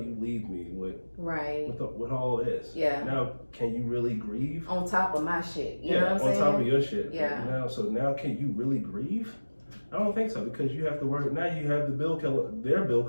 leave me with all this? Yeah. Now, can you really grieve? On top of my shit. You know what I'm saying? On top of your shit. Yeah. Now can you really grieve? I don't think so, because you have to worry. Now you have their bill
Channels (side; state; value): both; inverted; correlation -1.00